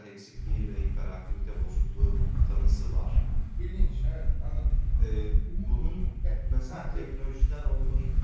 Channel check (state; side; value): identical; both; correlation 1.00